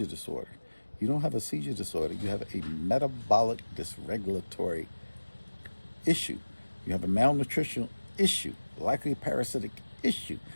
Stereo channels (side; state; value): both; inverted; correlation -1.00